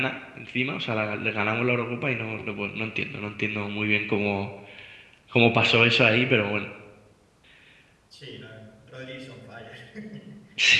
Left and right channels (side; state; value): both; identical; correlation 1.00